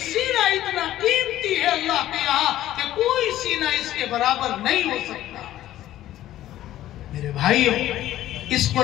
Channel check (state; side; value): quieter; right; 13.6 dB